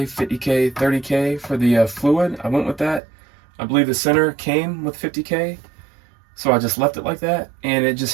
50K, 30K for the fluid. I went with that. I believe the center came with 50K, so I just left it like that, and it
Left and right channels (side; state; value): left; drops out; at 3.0 s